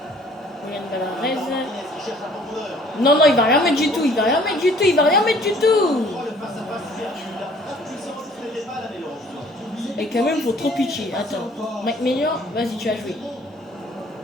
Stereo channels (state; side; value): normal; both; correlation 0.56